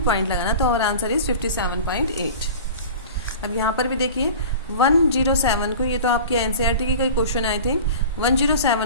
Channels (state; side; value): inverted; both; correlation -0.37